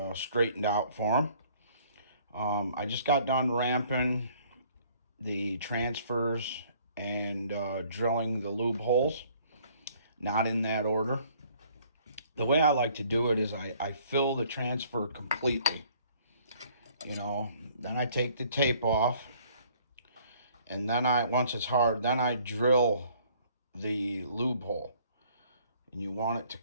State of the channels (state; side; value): inverted; both; correlation -0.59